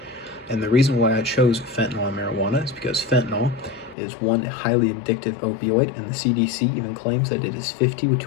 And the reason why I chose fentanyl and marijuana is because fentanyl is one highly addictive opioid, and the CDC even claims that it is 50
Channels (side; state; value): right; drops out; at 4.0 s